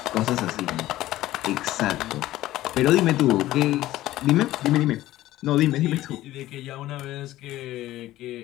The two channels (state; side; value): quieter; right; 15.5 dB